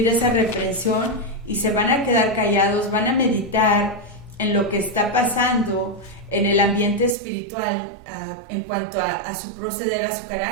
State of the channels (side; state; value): left; drops out; at 7.2 s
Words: esa reprensión y se van a quedar callados, van a meditar en lo que está pasando en el ambiente espiritual en cuanto a su proceder, a su